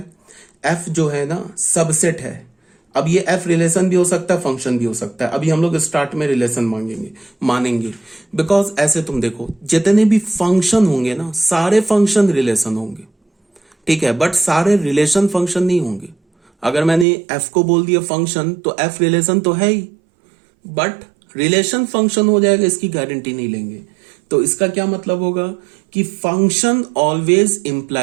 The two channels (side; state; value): left; drops out; at 17.1 s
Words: एफ जो है ना सबसेट है। अब ये एफ रिलेशन भी हो सकता है, फंक्शन भी हो सकता है। अभी हम लोग स्टार्ट में रिलेशन मानेंगे बिकॉज ऐसे तुम देखो जितने भी फंक्शन होंगे ना सारे फंक्शन रिलेशन होंगे, ठीक है, बट सारे रिलेशन फंक्शन नहीं होंगे। अगर मैंने एफ को बोल दिया फंक्शन तो एफ रिलेशन तो है ही, बट रिलेशन फंक्शन हो जाएगा इसकी गारंटी नहीं लेंगे। तो इसका क्या मतलब होगा कि function always